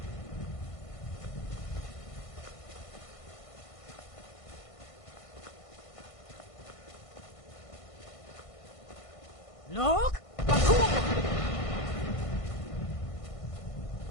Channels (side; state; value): right; late; 1.5 ms